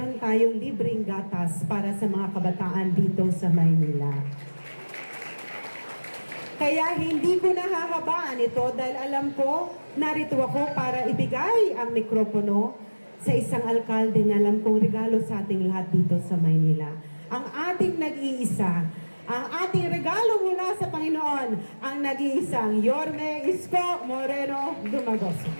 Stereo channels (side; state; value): both; inverted; correlation -1.00